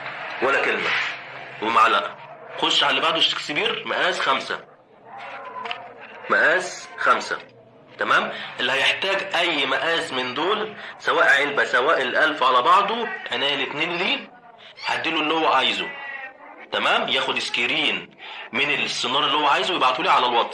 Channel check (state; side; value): identical; both; correlation 1.00